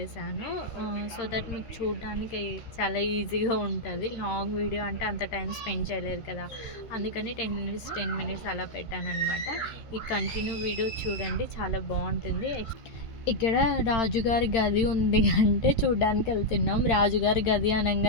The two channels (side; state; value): right; late; 13 ms